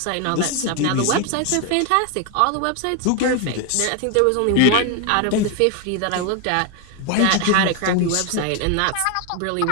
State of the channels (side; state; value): both; different; correlation 0.01